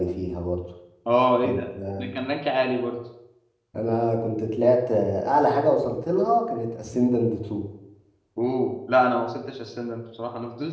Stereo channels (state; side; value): identical; both; correlation 1.00